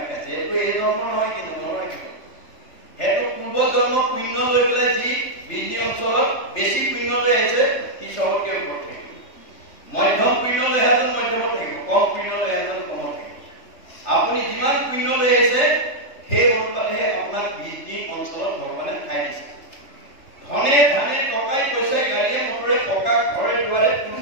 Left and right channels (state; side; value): late; right; 3.3 ms